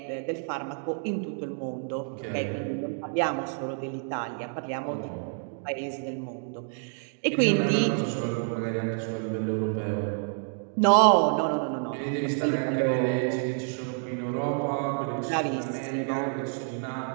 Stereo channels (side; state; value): left; silent; 59 dB below the other